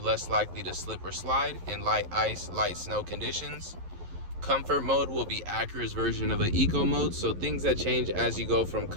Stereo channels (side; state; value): left; late; 11 ms